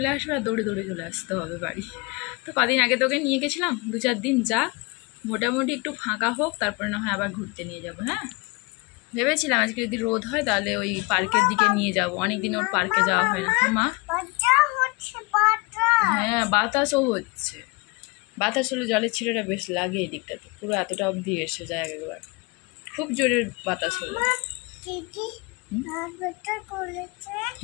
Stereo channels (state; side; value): quieter; right; 26.6 dB